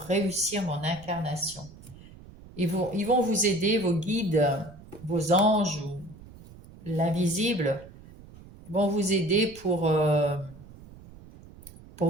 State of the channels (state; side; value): noise; right; rumble, 19 dB below the sound